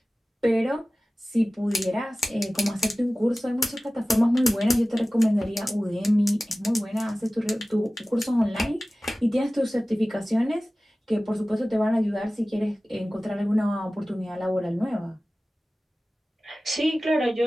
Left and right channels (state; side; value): normal; both; correlation 0.97